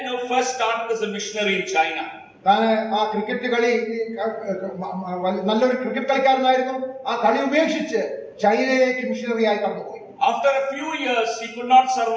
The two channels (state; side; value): identical; both; correlation 1.00